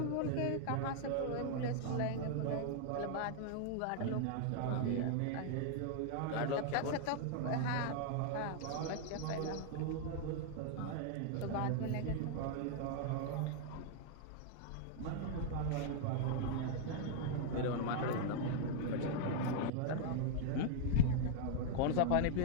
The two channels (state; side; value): different; both; correlation -0.01